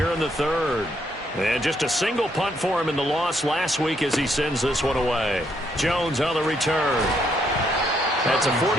in the 3rd. And just a single punt for him in the loss last week as he sends this one away. Jones on the return. That's a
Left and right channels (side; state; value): both; normal; correlation 0.73